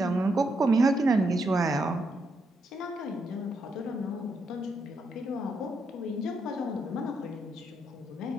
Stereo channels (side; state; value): both; normal; correlation 0.79